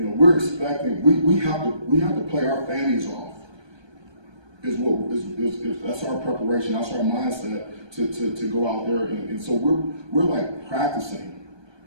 expecting, we have to play our fannies off. That's our preparation, that's our mindset to go out there, and so we're like practicing.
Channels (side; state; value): left; late; 1.2 ms